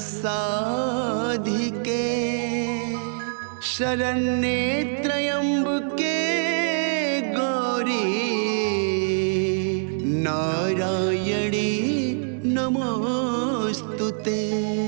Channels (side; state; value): left; silent; digital silence